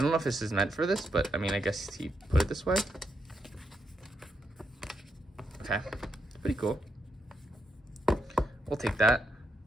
don't know if this is meant for this, but I mean, I guess he put it this way. Okay, it's pretty cool. We'll take that.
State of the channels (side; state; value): both; normal; correlation 0.80